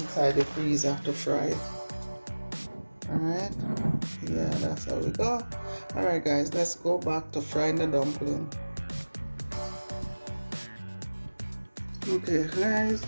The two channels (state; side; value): inverted; both; correlation -1.00